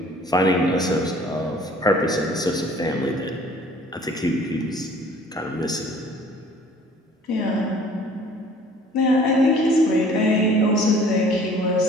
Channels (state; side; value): normal; both; correlation 0.52